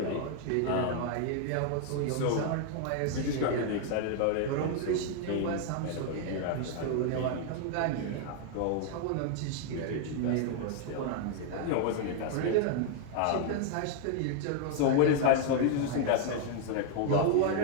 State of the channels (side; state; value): both; different; correlation 0.00